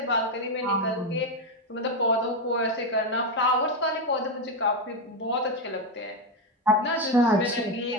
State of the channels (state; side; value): normal; both; correlation 0.08